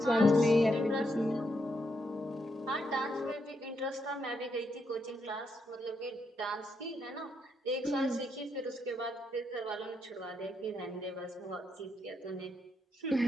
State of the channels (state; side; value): normal; both; correlation 0.79